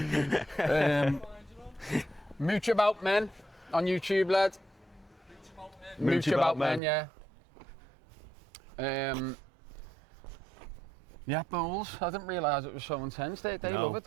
Mooch about men on YouTube, lad. Mooch about men, yeah. Yeah, bowls. I didn't realise it was so intense. They love it,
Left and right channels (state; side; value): drops out; left; at 6.8 s